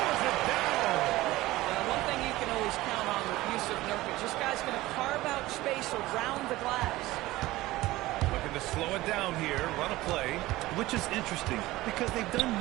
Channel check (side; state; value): left; quieter; 18.0 dB